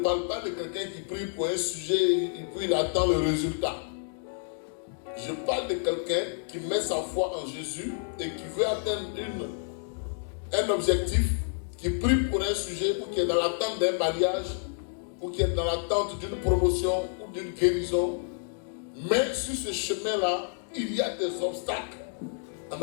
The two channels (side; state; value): right; silent; digital silence